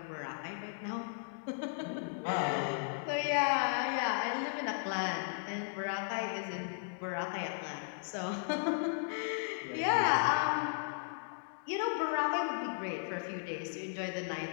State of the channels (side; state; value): right; silent; digital silence